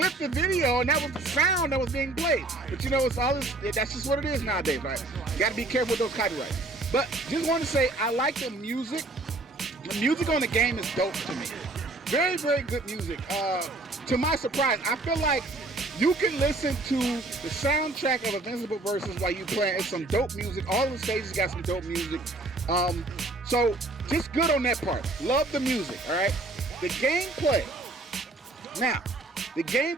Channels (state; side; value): quieter; left; 3.0 dB